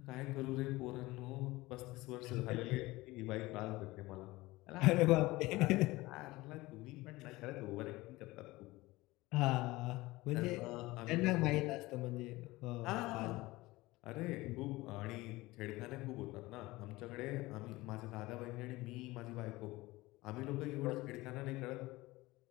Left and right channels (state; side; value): quieter; right; 20.1 dB